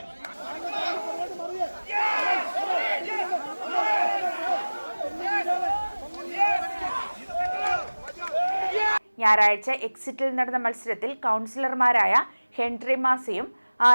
ഞായറാഴ്ച എക്സിറ്റിൽ നടന്ന മത്സരത്തിൽ കൗൺസിലർമാരായ ഹെൻറി മാസിയും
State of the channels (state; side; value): inverted; both; correlation -1.00